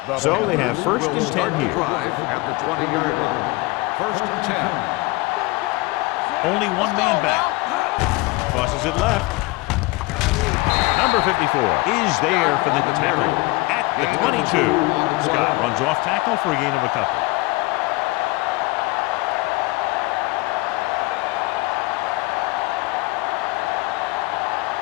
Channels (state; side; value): quieter; right; 23.0 dB